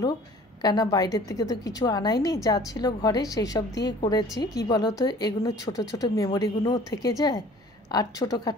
কেন বাইরের থেকে তো কিছু আনাইনি, যা ছিল ঘরে সেই সব দিয়ে করেছি। কি বলতো, এগুলো ছোট ছোট মেমোরিগুলোও থেকে যায় আর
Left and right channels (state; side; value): normal; both; correlation 0.49